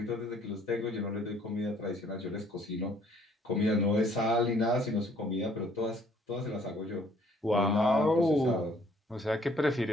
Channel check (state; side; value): normal; both; correlation 0.61